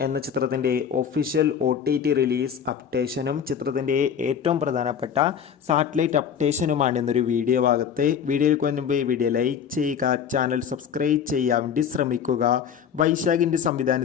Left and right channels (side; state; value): right; quieter; 7.9 dB